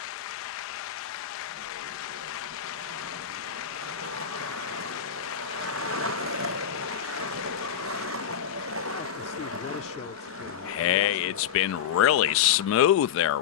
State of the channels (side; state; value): right; quieter; 9.0 dB